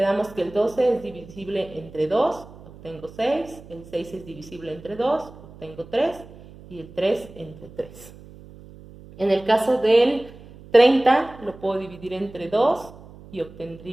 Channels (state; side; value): noise; right; hum, 19 dB below the sound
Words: que el 12 es divisible entre 2, obtengo 6. El 6 es divisible entre 2, obtengo 3. Y el 3 entre 3. En el caso del 30 lo puedo dividir entre 2 y